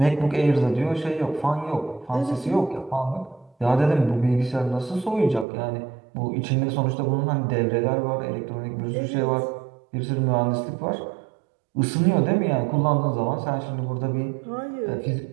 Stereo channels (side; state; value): left; drops out; at 5.5 s